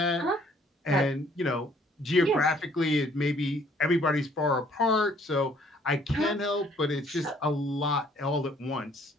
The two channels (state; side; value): normal; both; correlation 0.61